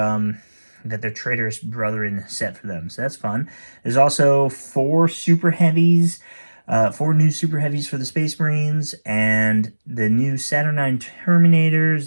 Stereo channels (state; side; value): inverted; both; correlation -1.00